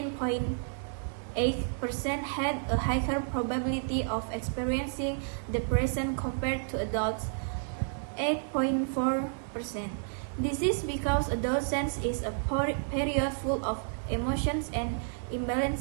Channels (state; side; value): silent; left; digital silence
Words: had a higher probability of experiencing depression compared to adults 8.4%. This is because adolescence is a period full of emotions and